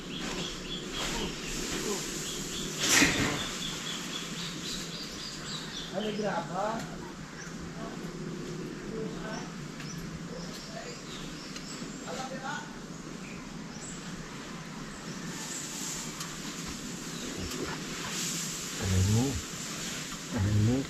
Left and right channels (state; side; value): identical; both; correlation 1.00